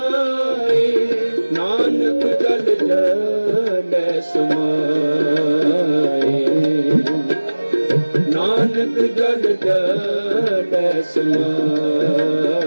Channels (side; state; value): both; inverted; correlation -1.00